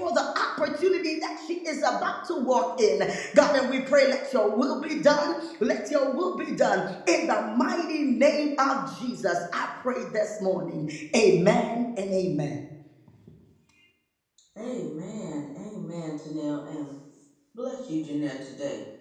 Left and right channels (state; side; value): identical; both; correlation 1.00